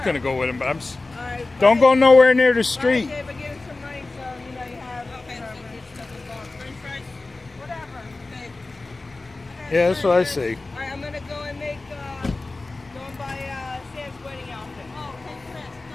gonna go with him, but All right. don't go nowhere near the street. Okay, but give us some money so you know you have. Okay, French fries. Whatever. Okay. Yeah, that's what I say. All right, I'm gonna go and make. Go and buy Sam's wedding outfit. Oh, okay, Chris.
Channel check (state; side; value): quieter; right; 3.3 dB